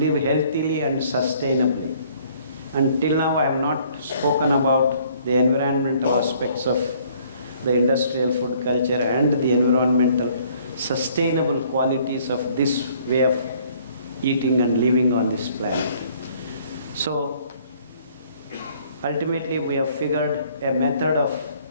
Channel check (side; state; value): both; inverted; correlation -0.60